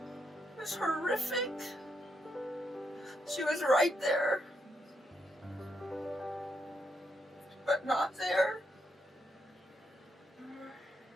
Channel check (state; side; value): normal; both; correlation 0.79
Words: was horrific. She was right there, but not there.